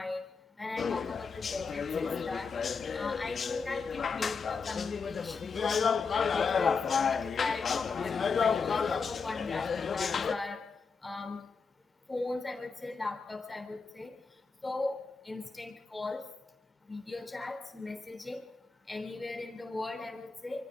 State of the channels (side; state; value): right; quieter; 5.0 dB